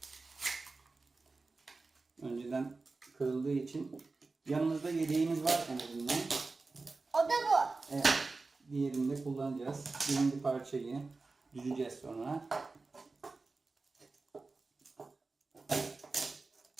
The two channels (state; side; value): quieter; left; 3.8 dB